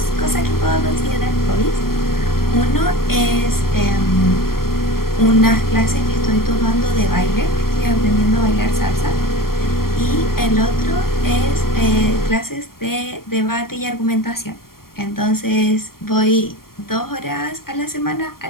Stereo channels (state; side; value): late; right; 0.93 ms